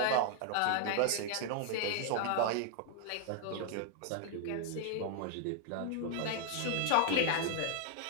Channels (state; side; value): different; both; correlation -0.01